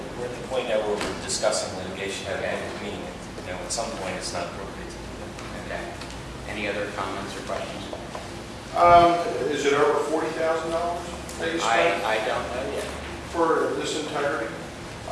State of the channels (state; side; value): identical; both; correlation 1.00